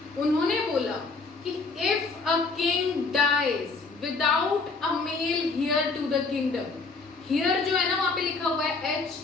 उन्होंने बोला कि if a king dies without a male heir to the kingdom, heir जो है ना वहां पे लिखा हुआ है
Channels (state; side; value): quieter; right; 4.0 dB